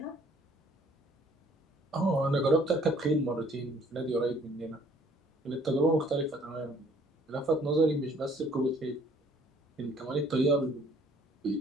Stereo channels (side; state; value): both; normal; correlation 0.59